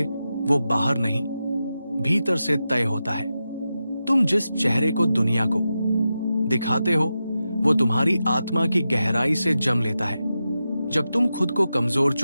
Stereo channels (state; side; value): inverted; both; correlation -0.90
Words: वो बाहर नहीं, भीतर से तय होता है। तुम जिस चेहरे को दुनिया को दिखाते हो वो तुम्हारी आत्मा की गहराई से जम लेता है। जब तुम खुद को कमजोर